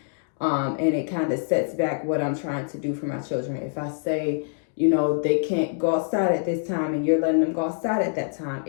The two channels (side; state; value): right; silent; digital silence